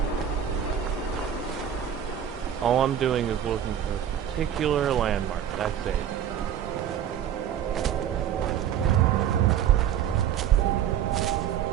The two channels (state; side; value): quieter; left; 9.6 dB